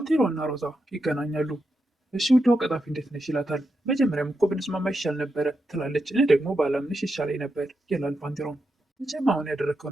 እና ሮዛ ይገናኛሉ። እሺ ውዷ ቀጣፊ እንዴት ነሽ ይላታል። መጀመሪያም እኮ ብንስማማ ይሻል ነበረ ትላለች። እኔ ደግሞ ባላምንሽ ይሻለኝ ነበር ይላል ባንቴሮም። መቼም አሁን ያደረግከው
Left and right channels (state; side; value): normal; both; correlation 0.86